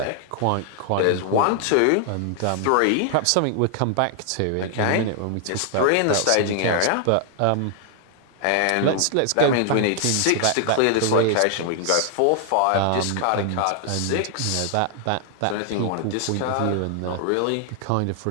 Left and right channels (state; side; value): different; both; correlation 0.00